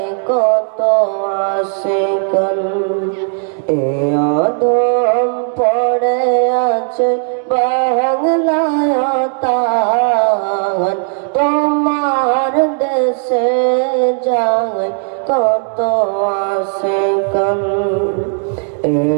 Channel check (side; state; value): left; silent; 59 dB below the other